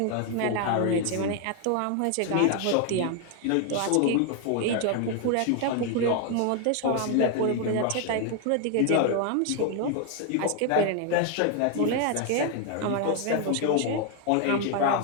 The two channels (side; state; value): both; different; correlation 0.01